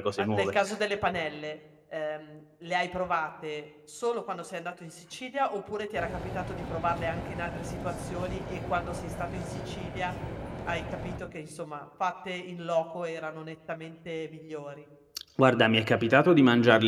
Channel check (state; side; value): identical; both; correlation 1.00